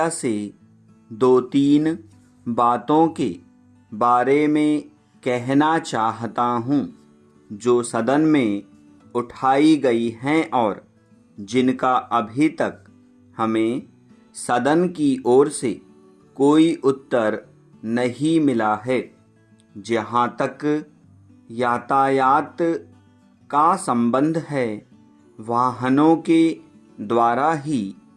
से 2-3 बातों के बारे में कहना चाहता हूँ जो सदन में उठाई गई हैं और जिनका अभी तक हमें सदन की ओर से कोई उत्तर नहीं मिला है। जहाँ तक यातायात का संबंध है, वाहनों के द्वारा ही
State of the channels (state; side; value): identical; both; correlation 1.00